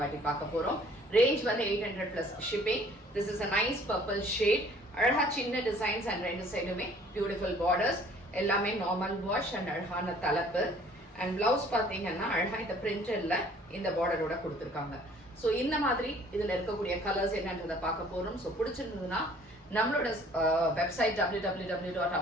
பார்க்க போறோம். ரேஞ்ச் வந்து 800 plus shipping. This is a nice purple shade. அழகா சின்ன டிசைன்ஸ் அண்ட் ரெண்டு சைடுமே பியூட்டிஃபுல் பார்டர்ஸ். எல்லாமே நார்மல் வாஷ் அண்ட் அழகான தலைப்பு. அண்ட் பிளவுஸ் பாத்தீங்கன்னா அழகா இந்த பிரிண்டர்ல இந்த பார்டரோட கொடுத்துருக்காங்க. ஸோ இந்த மாதிரி இதுல இருக்கக்கூடிய கலர்ஸ் என்னன்றதை பார்க்க போறோம். ஸோ பிடிச்சிருந்ததுன்னா நம்மளோட website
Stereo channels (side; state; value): both; normal; correlation 0.55